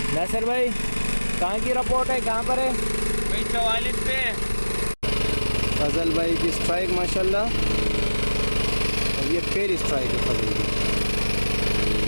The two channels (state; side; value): inverted; both; correlation -1.00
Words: नासिर भाई, कहाँ की रिपोर्ट है, कहाँ पर है? भाई 44 पे। फजल भाई की स्ट्राइक माशाल्लाह, और ये पहली स्ट्राइक है फजल की।